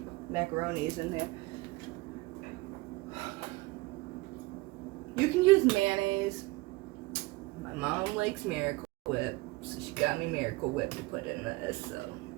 macaroni is in there. You can use mayonnaise. My mom likes Miracle Whip, so she got me Miracle Whip to put in this. So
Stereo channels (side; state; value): left; quieter; 22.2 dB